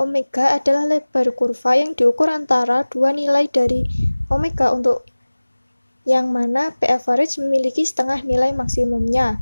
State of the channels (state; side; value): inverted; both; correlation -1.00